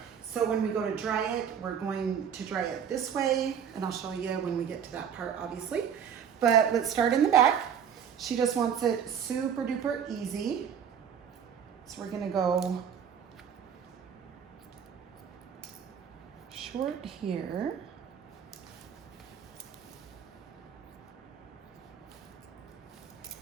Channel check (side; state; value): left; quieter; 8.0 dB